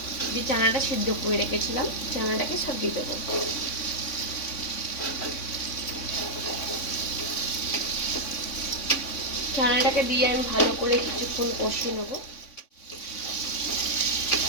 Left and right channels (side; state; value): right; late; 3.5 ms